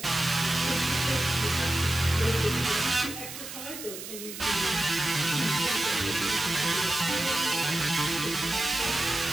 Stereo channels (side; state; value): right; noise; hiss, 10 dB below the sound